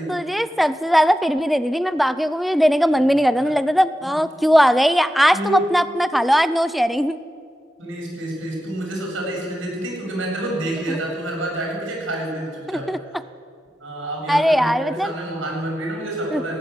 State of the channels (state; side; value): normal; both; correlation 0.90